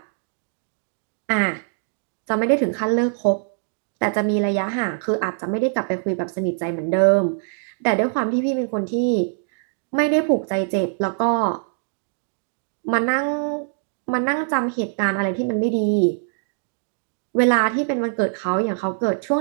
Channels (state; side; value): silent; left; digital silence